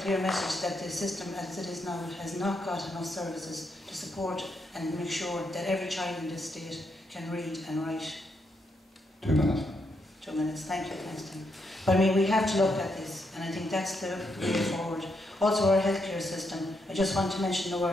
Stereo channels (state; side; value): normal; both; correlation 0.79